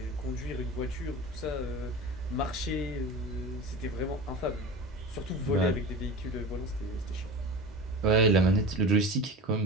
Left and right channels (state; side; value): normal; both; correlation 0.31